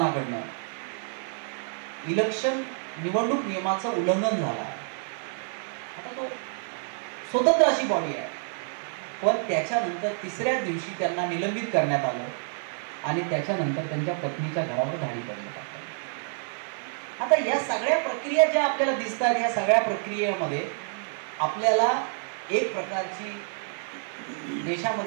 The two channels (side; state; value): left; silent; 59 dB below the other